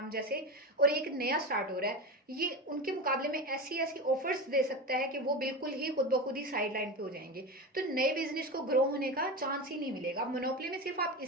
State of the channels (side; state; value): both; normal; correlation 0.22